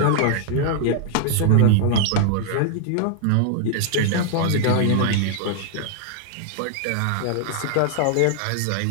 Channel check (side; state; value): both; different; correlation 0.00